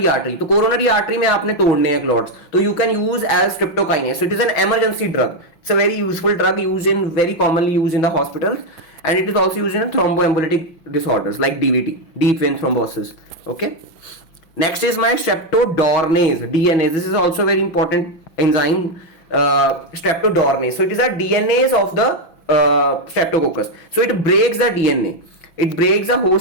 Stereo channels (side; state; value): right; late; 5.9 ms